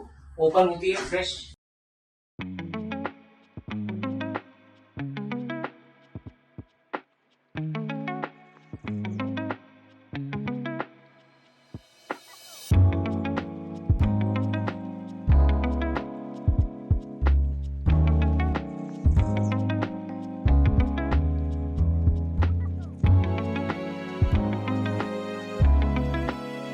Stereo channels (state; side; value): identical; both; correlation 1.00